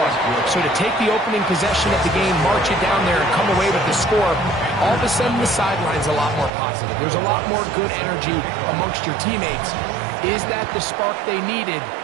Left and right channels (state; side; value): drops out; left; at 6.5 s